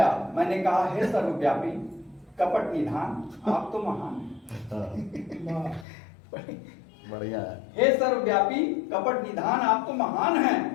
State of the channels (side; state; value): right; drops out; at 5.9 s